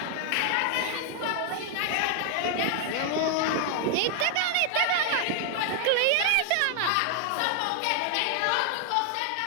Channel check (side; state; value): both; different; correlation 0.00